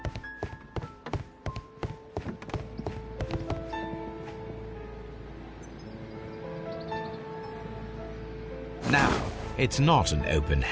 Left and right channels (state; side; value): identical; both; correlation 1.00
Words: Now, it's not an open